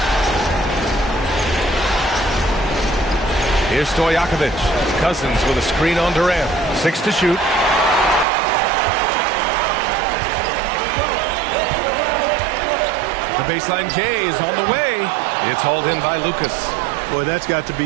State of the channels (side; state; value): left; drops out; at 8.2 s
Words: Here's Stojakovic. Cousins with a screen on Durant. 6 to shoot. The baseline J is on the way. It's hauled in by Lucas. Boy, that's got to